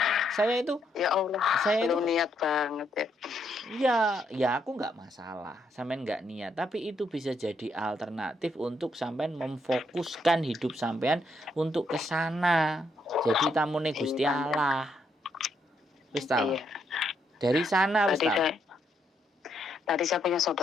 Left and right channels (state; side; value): normal; both; correlation 0.76